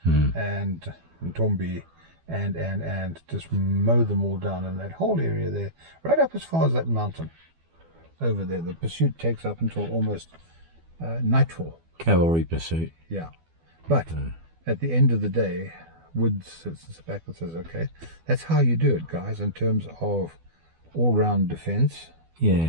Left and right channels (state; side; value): late; left; 12 ms